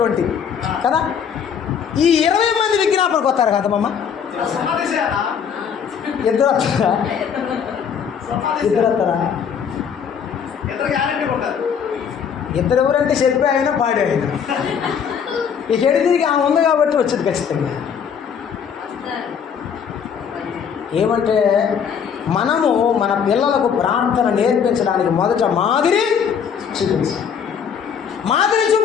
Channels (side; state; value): right; quieter; 7.3 dB